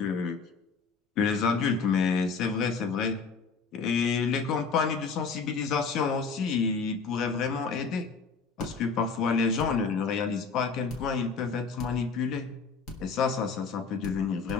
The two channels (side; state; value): right; quieter; 5.0 dB